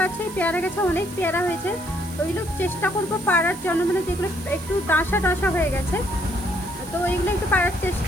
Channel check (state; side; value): noise; right; hiss, 17 dB below the sound